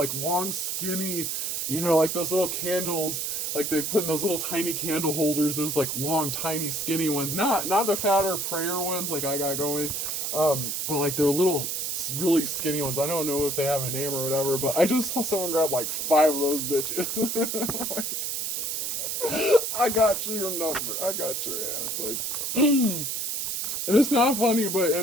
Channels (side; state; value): right; noise; hiss, 2 dB below the sound